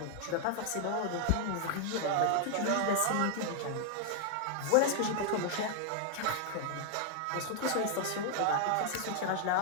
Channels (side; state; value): both; different; correlation -0.01